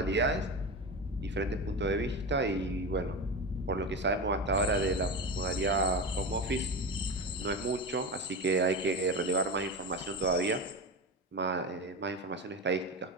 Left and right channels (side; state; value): both; normal; correlation 0.22